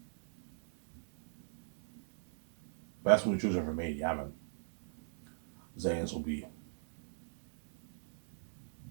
Best movie trilogy ever made. Yeah, man. Zane's will be.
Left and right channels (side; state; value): left; silent; digital silence